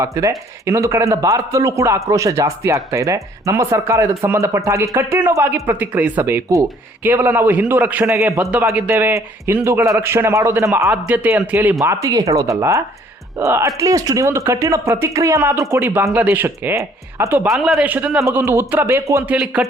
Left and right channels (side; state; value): both; normal; correlation 0.60